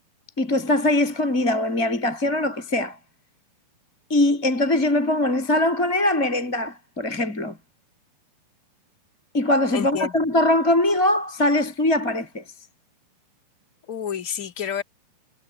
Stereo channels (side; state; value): right; late; 2.4 ms